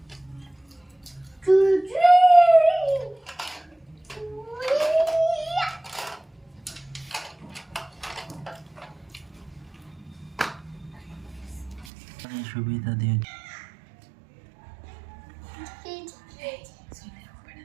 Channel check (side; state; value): left; drops out; at 11.9 s